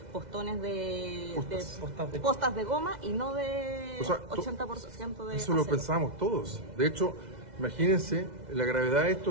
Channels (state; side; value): late; left; 2.0 ms